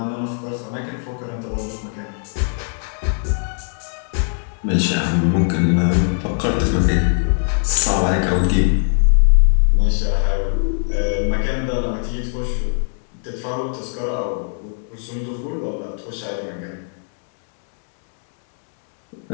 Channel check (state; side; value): silent; right; 65 dB below the other